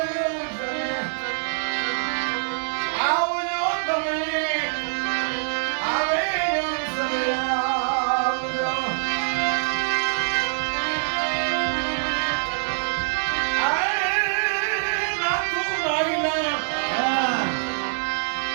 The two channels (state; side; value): silent; left; digital silence